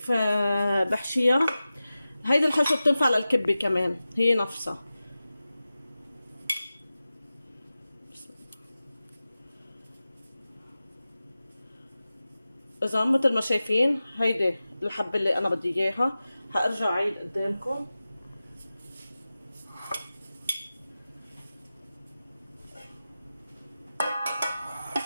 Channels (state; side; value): inverted; both; correlation -0.95